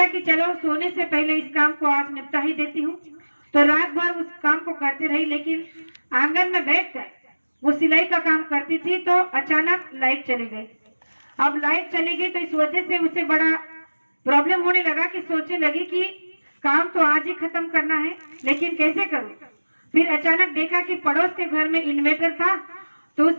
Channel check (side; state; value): both; inverted; correlation -1.00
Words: कि चलो सोने से पहले इस काम को आज निपटा ही देती हूँ। तो रात भर उस काम को करती रही, लेकिन आंगन में बैठकर वो सिलाई का काम करती थी तो अचानक लाइट चली गई। अब लाइट चली गई तो इस वजह से उसे बड़ा प्रॉब्लम होने लगा कि सोचने लगी कि काम तो आज ही खत्म करना है, लेकिन कैसे करूं। फिर अचानक देखा कि पड़ोस के घर में इन्वर्टर था, तो